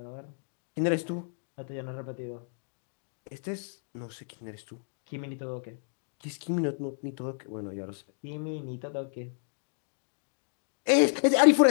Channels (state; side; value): silent; right; digital silence